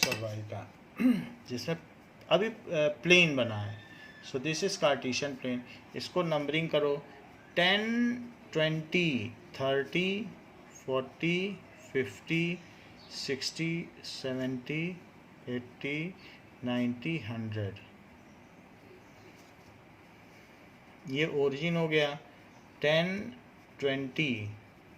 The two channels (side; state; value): both; identical; correlation 1.00